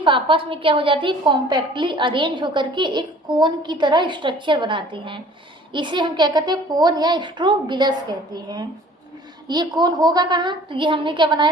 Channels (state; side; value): normal; both; correlation 0.50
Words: आपस में क्या हो जाती है? कॉम्पैक्टली अरेंज होकर के एक कोन की तरह स्ट्रक्चर बनाती हैं। इसे हम क्या कहते हैं? कोन या स्ट्रोबिलस कहते हैं। ये कोन होगा कहाँ, तो ये हमने क्या बनाया